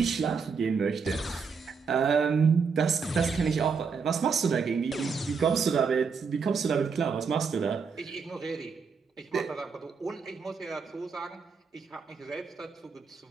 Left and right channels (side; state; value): left; quieter; 5.5 dB